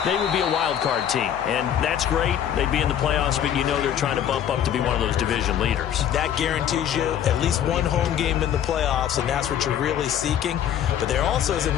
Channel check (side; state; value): right; quieter; 9.8 dB